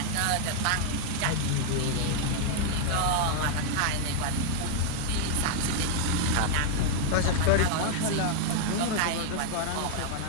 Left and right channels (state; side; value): different; both; correlation 0.00